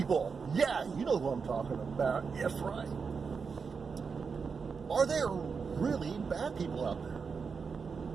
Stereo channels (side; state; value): left; quieter; 5.5 dB